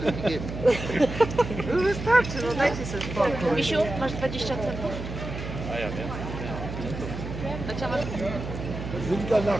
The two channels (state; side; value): noise; right; hum, 7 dB below the sound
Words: gegeben. Wystarczy, no dajcie sobie spokój. Misiu, masz 20 centów? Dacia masz... Sind wir nach